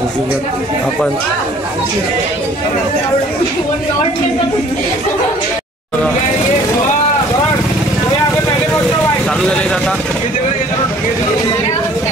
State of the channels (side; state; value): both; normal; correlation 0.54